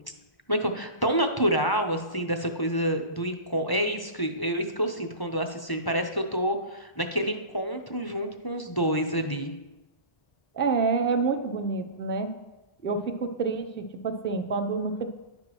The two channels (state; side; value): late; right; 1.0 ms